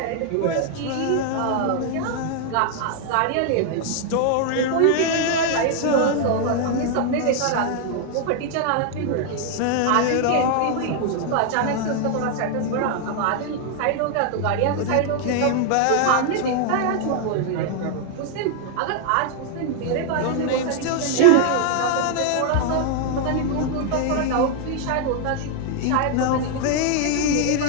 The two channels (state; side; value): different; both; correlation 0.00